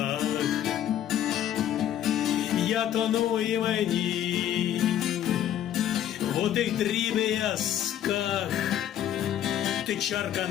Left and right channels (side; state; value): right; quieter; 11.0 dB